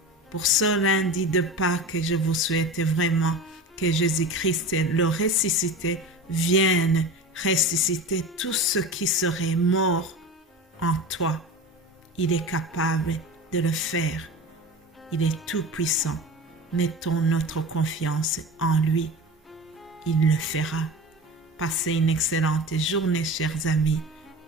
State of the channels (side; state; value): both; normal; correlation 0.31